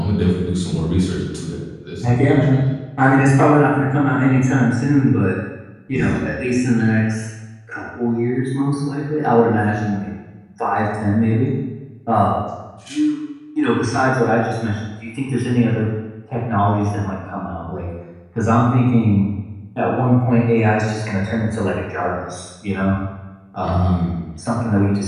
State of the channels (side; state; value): both; identical; correlation 1.00